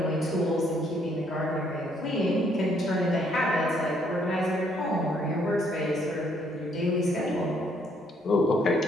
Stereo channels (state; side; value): normal; both; correlation 0.68